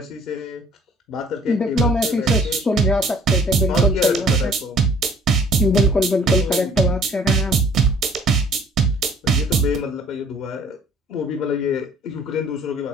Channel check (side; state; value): both; normal; correlation 0.56